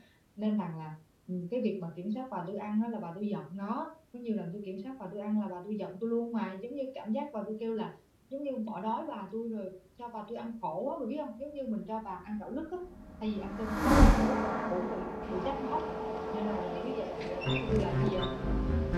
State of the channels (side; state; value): both; identical; correlation 1.00